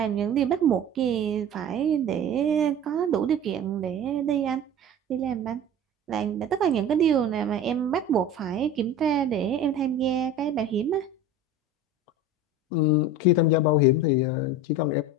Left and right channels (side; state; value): both; normal; correlation 0.35